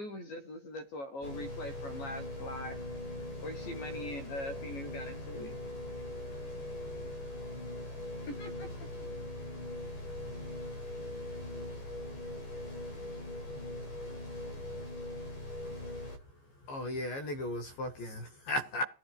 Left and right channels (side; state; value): right; late; 14 ms